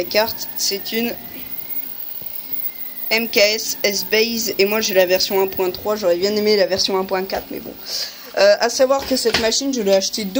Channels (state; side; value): identical; both; correlation 1.00